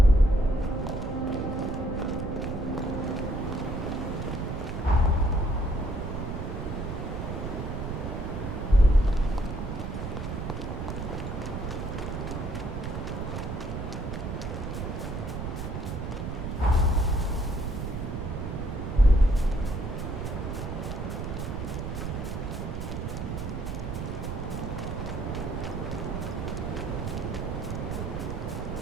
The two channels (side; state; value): right; noise; rumble, 4 dB below the sound